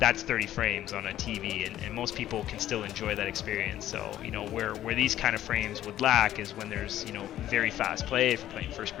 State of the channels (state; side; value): quieter; right; 12.7 dB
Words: 30 frames on a TV, and most people can still enjoy that experience. So, you know, where these kind of frames would lack is when there's, you know, very fast play, if you're playing